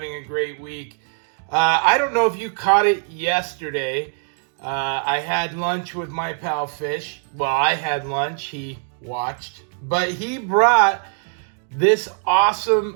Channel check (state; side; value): silent; left; 60 dB below the other